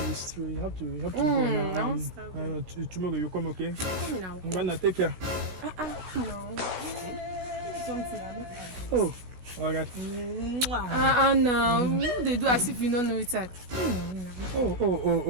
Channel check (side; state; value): left; late; 16 ms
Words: it's true. You have to go now. I want to start going. Tomorrow you come, okay? Come now. I'm gonna take care. No. Something. Oh, all right. No. They do as if you don't know it. Oh.